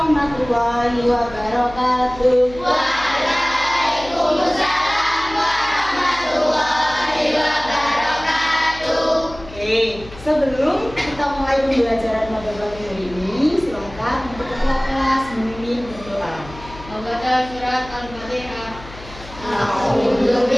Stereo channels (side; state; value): left; noise; hum, 17 dB below the sound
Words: wabarakatuh. Waalaikumsalam warahmatullahi wabarakatuh. Oke, sebelum kita mulai pembelajaran pada pagi hari ini, silakan untuk ketua kelas memimpin berdoa. Membaca surat Al-Fatihah. A'udzu